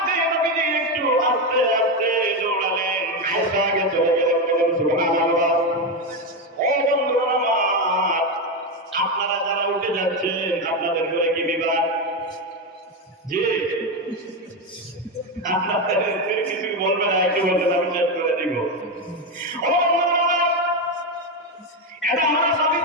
নবীজি একটু আস্তে আস্তে দৌড়ালেন, আয়েশা আগে চলে গেলেন। বলেন সুবহানাল্লাহ। ও বন্ধু আমার, আপনারা যারা উঠে যাচ্ছেন আপনাদের ঘরে কি বিবাদ? জি, আপনাদের কিছু বলবেন না, একটু বলবেন, আমি শেষ করে দিব। ও এটা আমার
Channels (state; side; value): normal; both; correlation 0.11